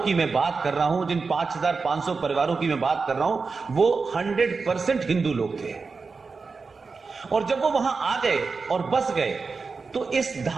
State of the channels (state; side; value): quieter; left; 4.6 dB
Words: मैं बात कर रहा हूं, जिन 5500 परिवारों की मैं बात कर रहा हूं, वो 100% हिंदू लोग थे। और जब वो वहां आ गए और बस गए, तो इस